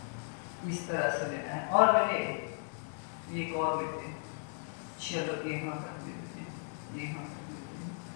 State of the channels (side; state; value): right; silent; 54 dB below the other